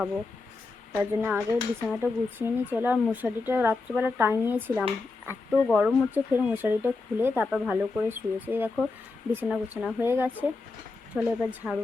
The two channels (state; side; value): quieter; right; 3.8 dB